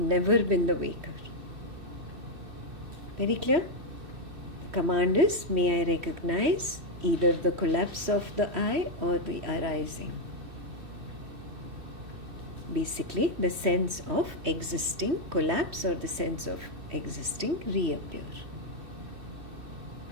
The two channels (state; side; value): late; left; 2.6 ms